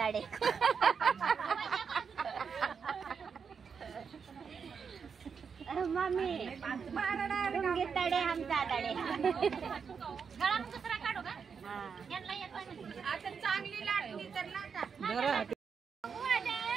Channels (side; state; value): left; quieter; 6.2 dB